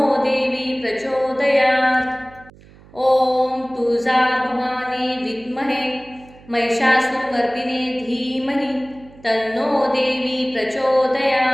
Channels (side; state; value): right; noise; hum, 24 dB below the sound